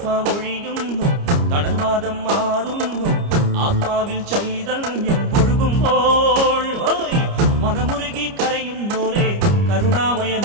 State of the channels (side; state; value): left; late; 29 ms